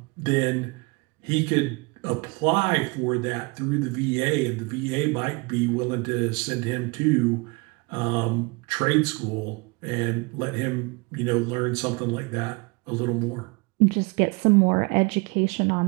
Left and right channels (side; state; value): left; quieter; 28.1 dB